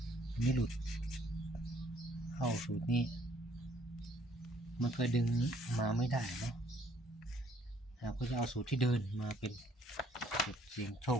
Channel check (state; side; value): normal; both; correlation 0.63